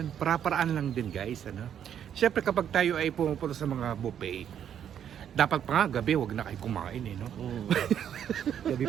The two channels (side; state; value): left; quieter; 9.2 dB